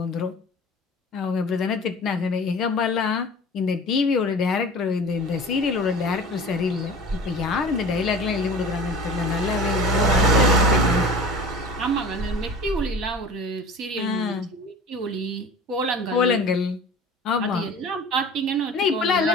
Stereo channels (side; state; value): both; normal; correlation 0.39